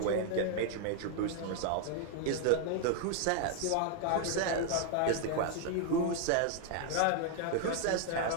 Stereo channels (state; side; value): different; both; correlation 0.00